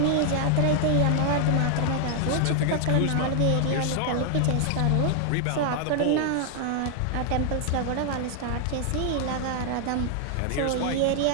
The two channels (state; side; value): different; both; correlation 0.00